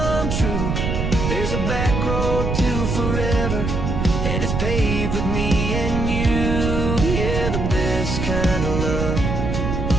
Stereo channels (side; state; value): right; noise; rumble, 1 dB below the sound